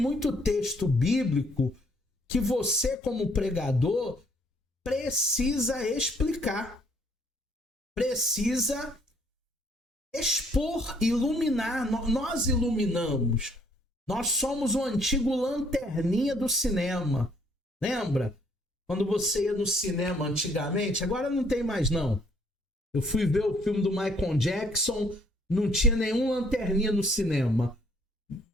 texto bíblico que você, como pregador, precisa explicar, precisa expor, iluminar. Nós iluminamos. Nós somos o antigo lanterninha do cinema. Lembra? Quando você ia no cinema antigamente, agora não tem mais não. Eu fui ver o filme do Michael Jackson, não tinha nenhum lanterninha no cinema.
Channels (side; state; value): both; normal; correlation 0.64